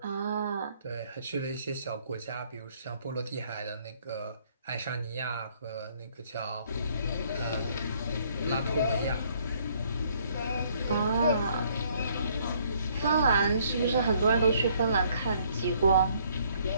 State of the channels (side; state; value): both; inverted; correlation -0.64